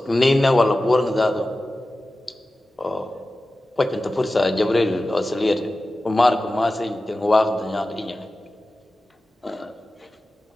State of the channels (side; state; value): both; normal; correlation 0.95